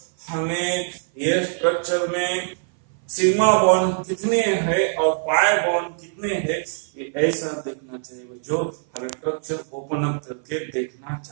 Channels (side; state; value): left; silent; 57 dB below the other